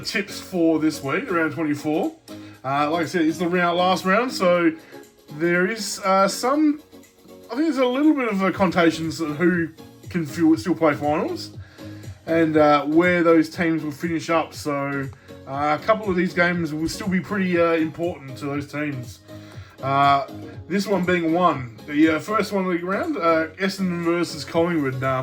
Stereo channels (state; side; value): identical; both; correlation 1.00